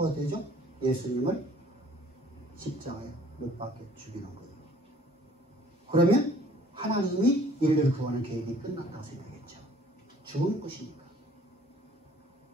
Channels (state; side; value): normal; both; correlation 0.55